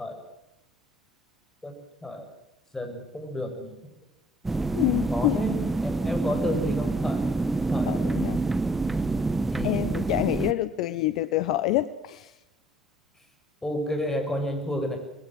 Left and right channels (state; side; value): normal; both; correlation 0.59